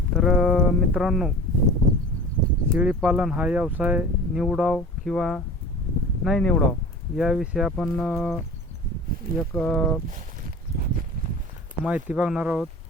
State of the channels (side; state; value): both; normal; correlation 0.38